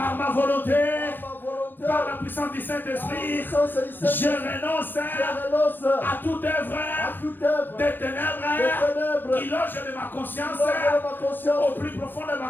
ma volonté, par la puissance du Saint-Esprit, je renonce à toute œuvre des ténèbres qui loge de ma conscience, au plus profond de ma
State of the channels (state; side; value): late; right; 0.093 ms